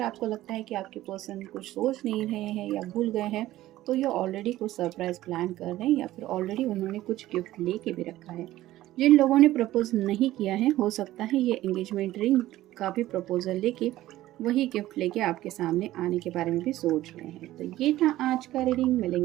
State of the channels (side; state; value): left; quieter; 15.3 dB